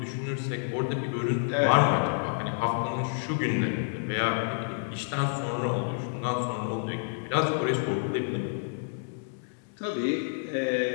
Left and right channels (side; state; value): right; silent; 59 dB below the other